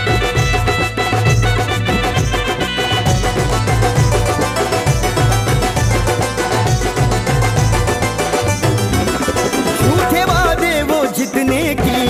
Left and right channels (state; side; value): identical; both; correlation 1.00